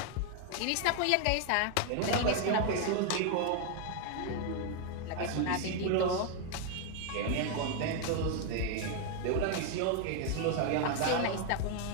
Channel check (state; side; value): different; both; correlation 0.01